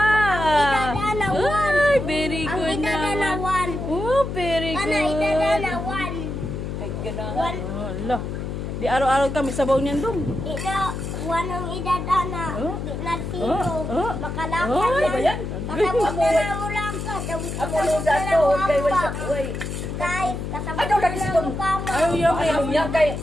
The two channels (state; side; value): noise; left; hum, 5 dB below the sound